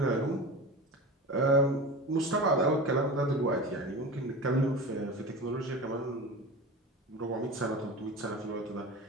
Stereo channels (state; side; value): normal; both; correlation 0.30